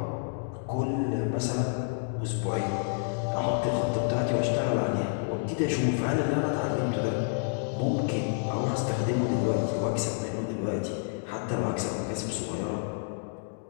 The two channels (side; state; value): right; silent; digital silence